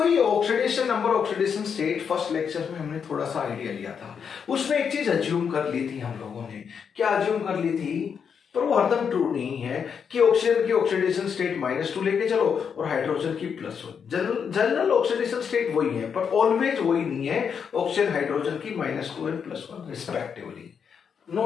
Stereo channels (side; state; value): right; quieter; 6.9 dB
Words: ये oxidation number oxidation state first lecture में हमने थोड़ा सा आइडिया लिया था. उसमें एक चीज अज्यूम कर ली थी हम लोगों ने. क्या अज्यूम कर ली थी? पर वो हरदम ट्रू नहीं है कि ऑक्सीजन की ऑक्सीडेशन स्टेट -2 लेके चलो और हाइड्रोजन की +1. जनरल ऑक्सीडेशन स्टेट वही है, पर ऑलवेज वही नहीं है. ऑक्सीजन हाइड्रोजन की -2 एंड +1 रिस्पेक्टिवली,